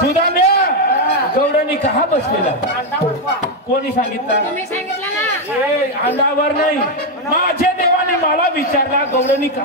गौडणी कहा बसलेला अंडावर पहा. कोणी सांगितलं तुम्ही सांगितलं ना ए अंडावर नाही माझे देवाने मला विचारला गौडणी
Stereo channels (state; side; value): normal; both; correlation 0.04